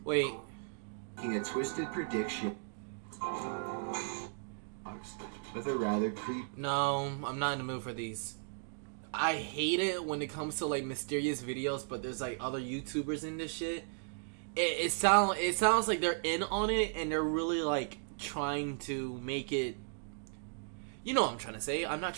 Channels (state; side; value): silent; left; digital silence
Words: Wait. Making a twisted prediction with a rather creepy. No, I'm not in the mood for these. I hate it when it comes to like mysterious videos, but there's like other YouTubers in this shit. It sounds like they're in on it and they're really like trying to make it. You know what I'm trying to say. I'm not